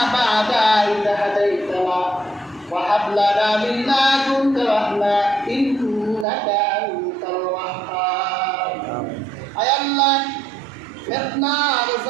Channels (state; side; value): drops out; left; at 6.2 s